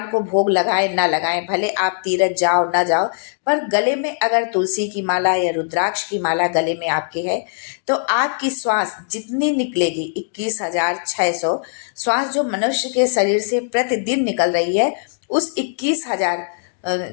को भोग लगाए ना लगाएं, भले आप तीरथ जाओ ना जाओ, पर गले में अगर तुलसी की माला या रुद्राक्ष की माला गले में आपके है तो आपकी श्वास जितनी निकलेगी, 21,600 श्वास जो मनुष्य के शरीर से प्रतिदिन निकल रही है, उस 21,000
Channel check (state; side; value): silent; right; digital silence